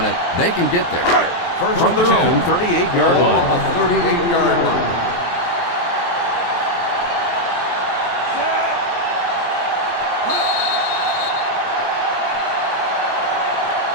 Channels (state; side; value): late; right; 23 ms